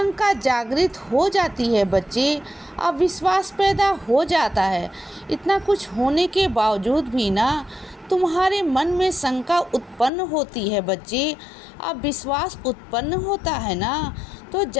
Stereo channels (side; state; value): right; drops out; at 10.1 s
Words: जागृत हो जाती है बच्चे, अविश्वास पैदा हो जाता है। इतना कुछ होने के बावजूद भी ना तुम्हारे मन में शंका उत्पन्न होती है बच्चे, अविश्वास उत्पन्न होता है ना, तो